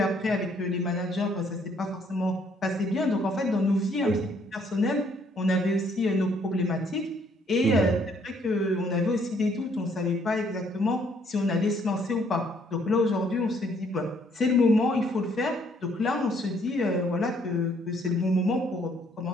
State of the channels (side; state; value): both; normal; correlation 0.66